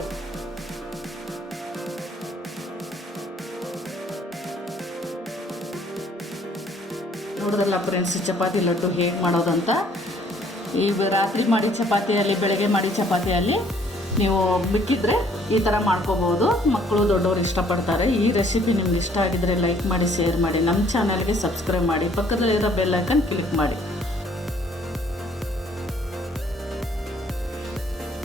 ನೋಡಿದ್ರಲ್ಲ ಫ್ರೆಂಡ್ಸ್, ಚಪಾತಿ ಲಡ್ಡು ಹೇಗೆ ಮಾಡೋದಂತ. ಈ ರಾತ್ರಿ ಮಾಡಿ ಚಪಾತಿಯಲ್ಲಿ, ಬೆಳಗ್ಗೆ ಮಾಡಿ ಚಪಾತಿಯಲ್ಲಿ ನೀವು ಮಿಕ್ಕಿದ್ರೆ ಈ ಥರ ಮಾಡ್ಕೋಬೋದು. ಮಕ್ಕಳು ದೊಡ್ಡವರು ಇಷ್ಟಪಡ್ತಾರೆ. ಈ ರೆಸಿಪಿ ನಿಮ್ಗೆ ಇಷ್ಟ ಆಗಿದ್ರೆ ಲೈಕ್ ಮಾಡಿ, ಶೇರ್ ಮಾಡಿ, ನಮ್ಮ ಚಾನಲ್ಗೆ ಸಬ್ಸ್ಕ್ರೈಬ್ ಮಾಡಿ, ಪಕ್ಕದಲ್ಲಿರೋ ಬೆಲ್ ಐಕನ್ ಕ್ಲಿಕ್ ಮಾಡಿ.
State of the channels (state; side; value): normal; both; correlation 0.61